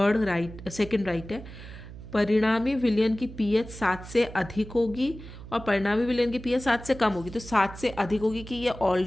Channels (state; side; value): noise; right; hum, 14 dB below the sound